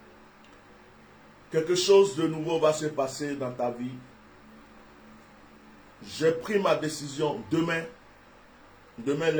Quelque chose de nouveau va se passer dans ta vie. J'ai pris ma décision demain. Demain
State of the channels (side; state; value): both; identical; correlation 1.00